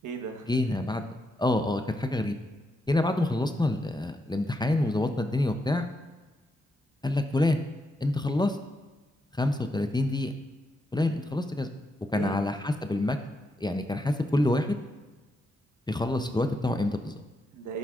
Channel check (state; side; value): normal; both; correlation 0.83